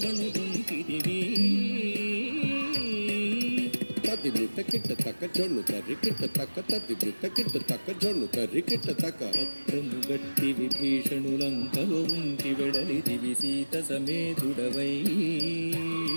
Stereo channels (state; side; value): inverted; both; correlation -1.00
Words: గుంజితివి తది బిట్ట కిట్ట తక్క జొన్ను తరి కిట్ట తక్క తది బిట్ట కిట్ట తక్క జొన్ను తరి కిట్ట తక్క పత్రము గట్టి విభీషణులంకలో ఉంచి వెడలిదివి సీత సమేతుడవై